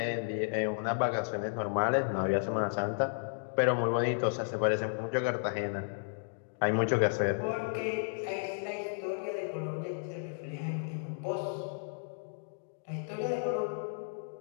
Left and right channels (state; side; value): silent; right; digital silence